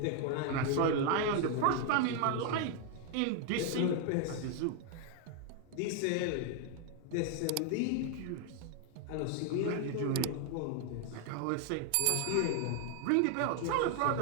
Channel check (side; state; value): both; different; correlation 0.00